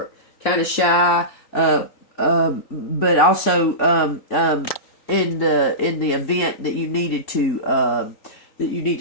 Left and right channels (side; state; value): right; late; 3.9 ms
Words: kind of shy, but also in the event that you needed to that you need